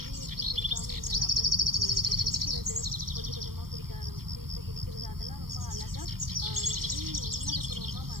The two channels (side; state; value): left; late; 0.93 ms